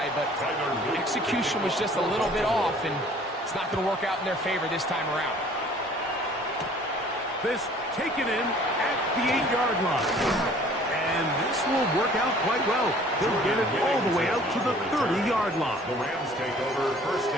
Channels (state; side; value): normal; both; correlation 0.53